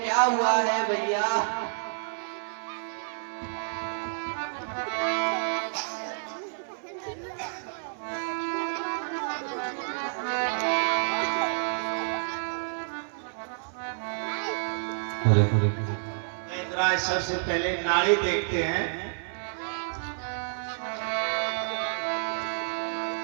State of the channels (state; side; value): silent; left; 57 dB below the other